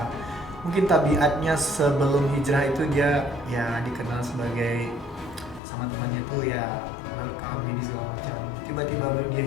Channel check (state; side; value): drops out; right; at 5.6 s